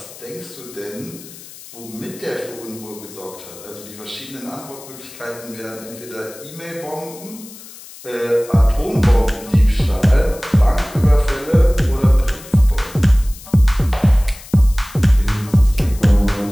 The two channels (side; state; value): left; noise; hiss, 18 dB below the sound